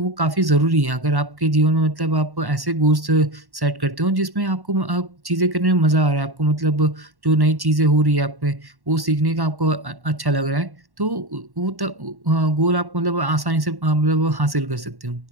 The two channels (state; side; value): late; left; 1.1 ms